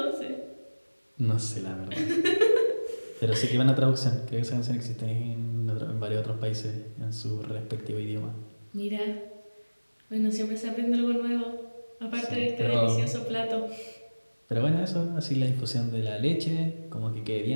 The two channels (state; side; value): inverted; both; correlation -1.00